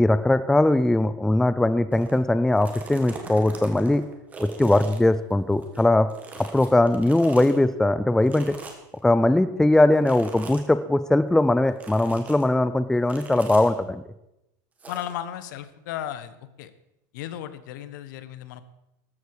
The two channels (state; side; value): normal; both; correlation 0.96